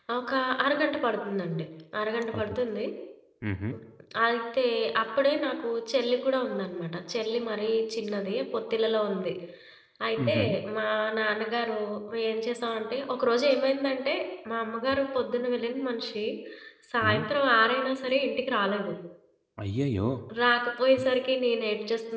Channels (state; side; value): identical; both; correlation 1.00